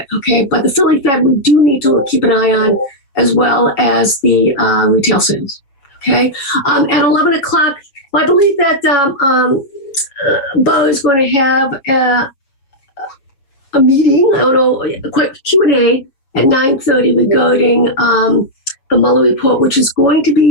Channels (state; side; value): late; right; 7.2 ms